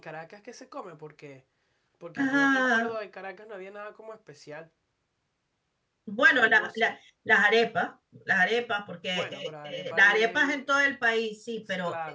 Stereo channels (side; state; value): both; identical; correlation 1.00